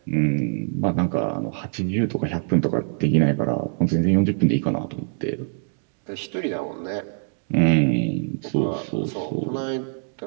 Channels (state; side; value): silent; left; digital silence